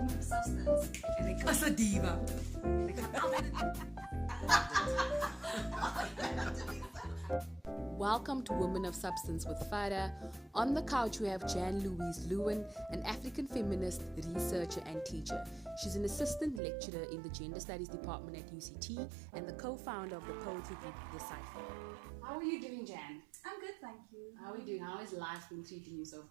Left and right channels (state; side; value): drops out; left; at 16.6 s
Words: of substance. As a diva. Welcome to Women of Substance with Farah. On the couch we have Jan-Louise Lewin, an African feminist, researcher and teacher. She's an assistant lecturer in the Gender Studies Department at UCT and the co-founder of the poetry group, the Cypher. How are you doing, Jan? I'm good, thank you. How are you doing? How has life been treating you so